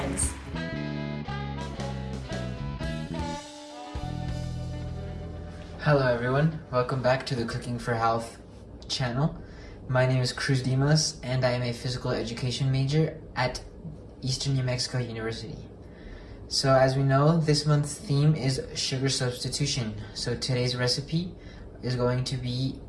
Hello everyone, welcome back to the Cooking for Health channel. My name is Cruz Dimas and I am a physical education major at Eastern New Mexico University. So as we know, this month's theme is sugar substitution. So today's recipe is going to be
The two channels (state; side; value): identical; both; correlation 1.00